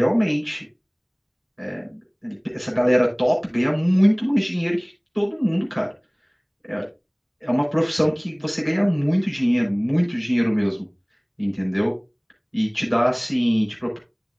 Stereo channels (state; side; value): identical; both; correlation 1.00